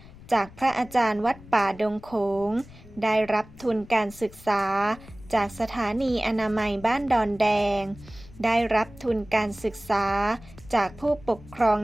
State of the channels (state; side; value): noise; left; rumble, 20 dB below the sound